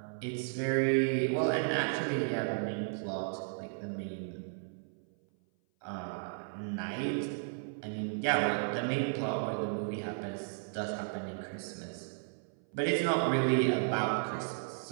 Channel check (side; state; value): left; silent; 55 dB below the other